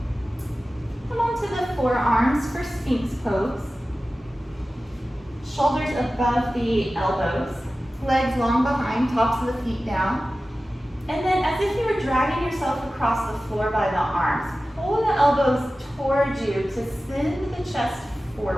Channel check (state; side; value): normal; both; correlation 0.95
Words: Come onto the forearms for Sphinx pose. Shoulders above the elbows, legs long behind, tops of the feet down. And then as if you were dragging yourself across the floor by the arms, pull the elbows towards you to send the chest